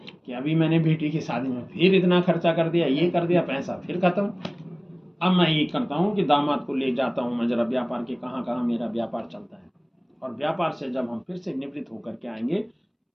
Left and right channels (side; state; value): both; identical; correlation 1.00